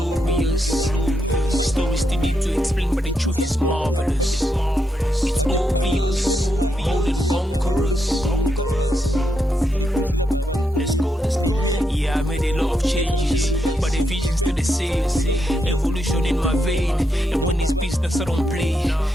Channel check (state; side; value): normal; both; correlation 0.82